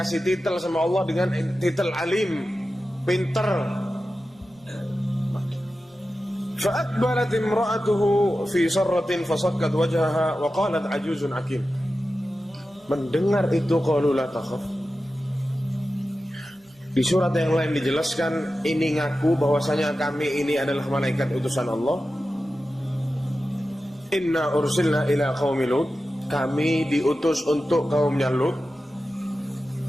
titel sama Allah dengan titel alim, pinter. Fa'aqbalat imra'atuhu fi sarratin fasakkat wajhaha wa qalat ajuzun akim. Mendengar itu qalu la takhaf. Di surat yang lain dijelaskan, ini ngaku bahwasanya kami ini adalah malaikat utusan Allah. Inna ursilna ila qaumi Lut, kami diutus untuk kaumnya Lut.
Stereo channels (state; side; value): normal; both; correlation 0.93